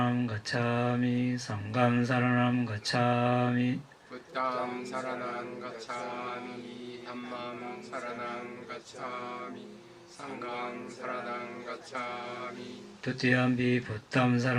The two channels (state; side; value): identical; both; correlation 1.00